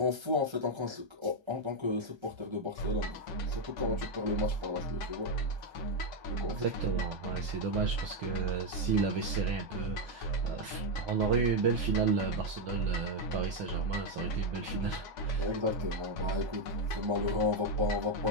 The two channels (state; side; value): late; left; 1.3 ms